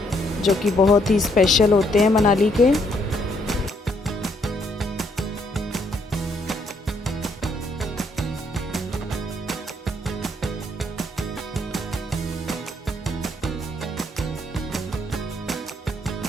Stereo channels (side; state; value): both; normal; correlation 0.71